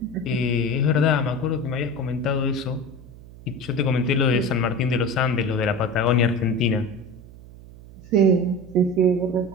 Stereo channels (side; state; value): right; noise; hum, 19 dB below the sound